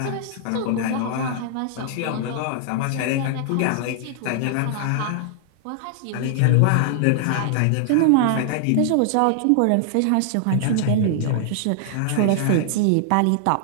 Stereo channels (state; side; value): different; both; correlation -0.01